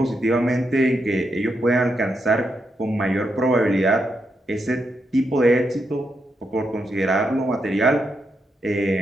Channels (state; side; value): normal; both; correlation 0.83